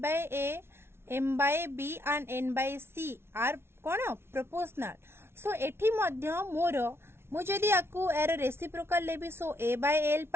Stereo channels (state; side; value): late; left; 0.12 ms